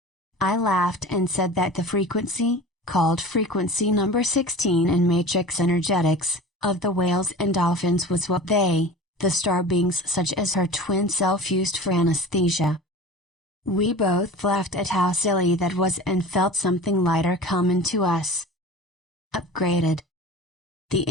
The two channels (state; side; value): normal; both; correlation 0.37